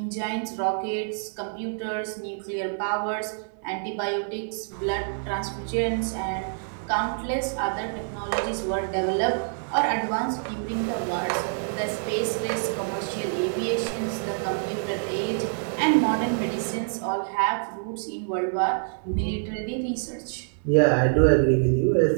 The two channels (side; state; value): left; silent; digital silence